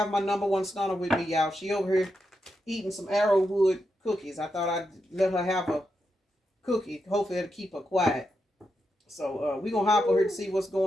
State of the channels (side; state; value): both; normal; correlation 0.85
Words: my number one stunner with me, y'all. She over here eating some arrowwood cookies. I thought I'd let her have a cookie. Hopefully it'll keep her quiet. So we're going to hop over here to see what's